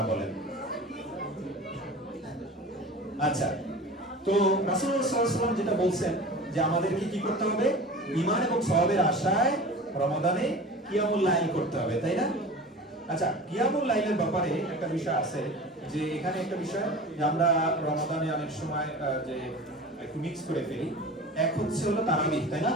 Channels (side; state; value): both; normal; correlation 0.36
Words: বলেন। আচ্ছা, তো রাসূলুল্লাহ সাল্লাল্লাহু আলাইহি ওয়াসাল্লাম যেটা বলছেন যে আমাদেরকে কি করতে হবে? ঈমান এবং সওয়াবের আশায় রমাদানে কিয়ামুল লাইল করতে হবে, তাই না? আচ্ছা, কিয়ামুল লাইলের ব্যাপারে একটা বিষয় আছে, যে এখানে একটা বিষয় যে আমরা রমাদানে অনেক সময় যে একটু মিক্স করে ফেলি। এক হচ্ছে হলো তারাবিহ, তাই না?